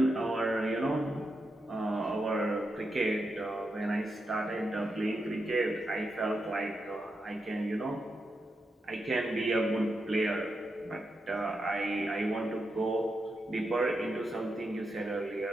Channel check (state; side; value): normal; both; correlation 0.86